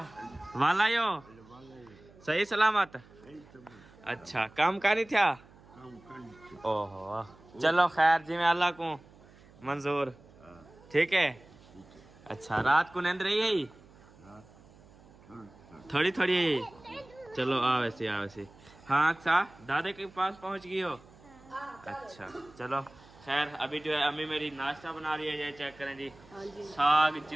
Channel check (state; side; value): noise; right; hum, 25 dB below the sound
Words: वाला यो सही सलामत। अच्छा काम का नहीं था। ओहो चलो खैर जी, मैं अल्लाह को मंजूर, ठीक है। अच्छा रात को नींद रही है थोड़ी थोड़ी, चलो आ वैसे आ वैसे। हाँ अच्छा दादे के पास पहुंच गई हो। अच्छा चलो खैर अभी जो है अम्मी मेरी नाश्ता बना रही है, ये चेक करें जी, साग